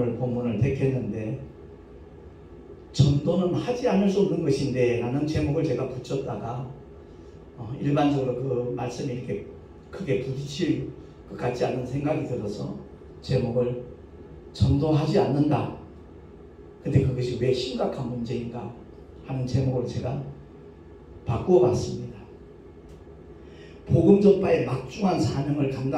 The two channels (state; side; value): identical; both; correlation 1.00